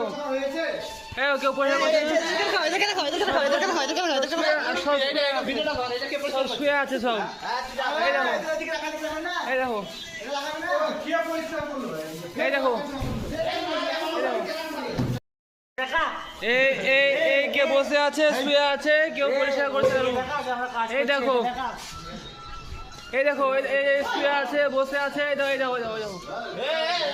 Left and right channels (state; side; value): identical; both; correlation 1.00